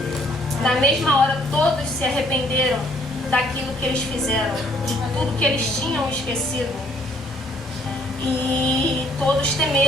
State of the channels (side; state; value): both; normal; correlation 0.64